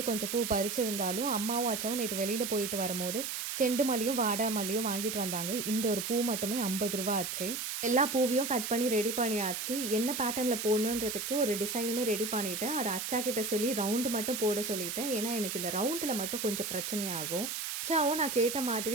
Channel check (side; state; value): right; noise; hiss, 4 dB below the sound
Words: கொஞ்சம் பூ பறிச்சிருந்தாலும், அம்மாவும் அச்சாவும் நேத்து வெளியில போயிட்டு வரும்போது, செண்டு மல்லியும், வாடா மல்லியும் வாங்கிட்டு வந்தாங்க. இந்த ஒரு பூ மட்டுமே ரூ. 50 ஆச்சு. எல்லா பூவையும் கட் பண்ணி ரெடி பண்ணியாச்சு. என்ன பேட்டர்ன்ல போடணுன்றதுக்கு ஒரு டிசைனுமே ரெடி பண்ணிட்டேன். அத அச்சாகிட்ட சொல்லி ரவுண்டு மட்டும் போட சொல்லிட்டேன். ஏன்னா, எனக்கு இந்த ரவுண்டுல மட்டும் கொஞ்சம் பிரச்சனையாகும். அச்சாவும் நான் கேட்ட